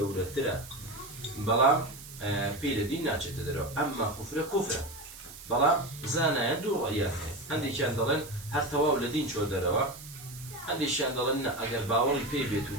قولتها بەڵام پێی لە دین ناچێتە دەرەوە ئەمما کوفرە بەڵام زانایە دوو ڕەیە هەیە هەندێکیان دەڵێن هەر تەواو لە دین چۆ دەرەوە هەندێکیان دەڵێن ئەگەر باوەڕی پێی بێت و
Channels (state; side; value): noise; right; hiss, 15 dB below the sound